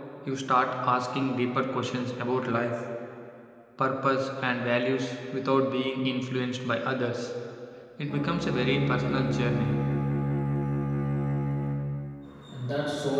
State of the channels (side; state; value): both; identical; correlation 1.00